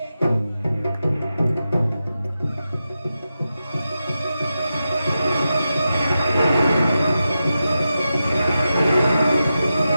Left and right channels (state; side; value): inverted; both; correlation -0.90